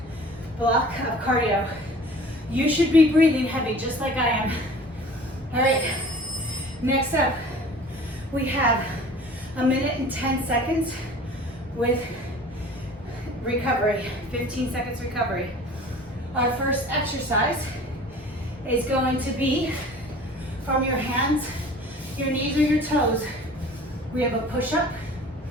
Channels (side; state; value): both; normal; correlation 0.45